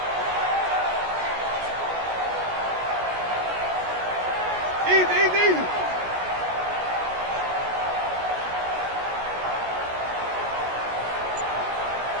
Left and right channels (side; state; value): left; late; 16 ms